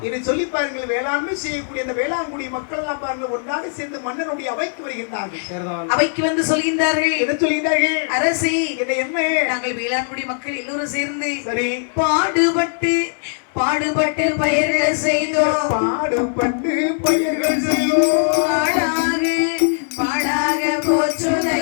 இதை சொல்லி பாருங்கள். வேளாண்மை செய்யக்கூடிய அந்த வேளாண்குடி மக்கள் எல்லாம் பாருங்கள் ஒன்றாக சேர்ந்து மன்னனுடைய அவைக்கு வருகின்றார்கள். அவைக்கு வந்து சொல்கின்றார்கள். என்ன சொல்கின்றார்கள்? அரசி என்ன நாங்கள் வேளாண்குடி மக்கள் எல்லோரும் சேர்ந்து சரி பாடுபட்டு பயிர்கள் செய்தோம். பாடுபட்டு பயிர்கள் செய்தோம். பாடாக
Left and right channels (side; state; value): right; silent; digital silence